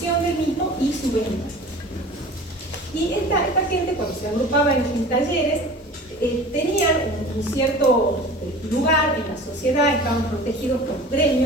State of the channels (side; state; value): both; normal; correlation 0.40